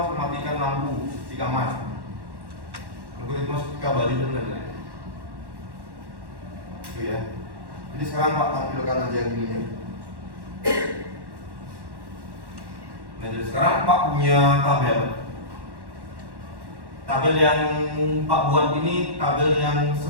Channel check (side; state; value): left; late; 1.1 ms